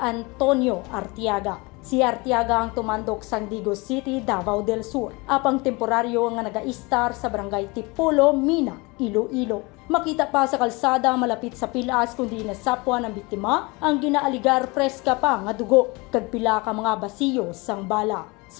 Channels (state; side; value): quieter; right; 26.0 dB